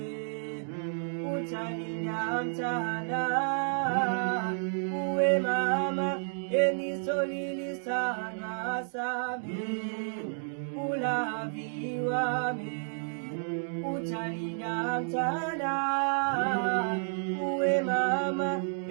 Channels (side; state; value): left; silent; digital silence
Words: utalinda mchana uwe mama enisolili sana same ulaviwa me utalinda mchana uwe mama